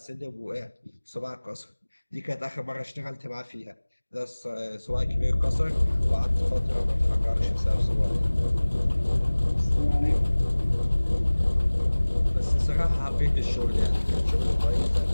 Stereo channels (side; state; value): both; inverted; correlation -1.00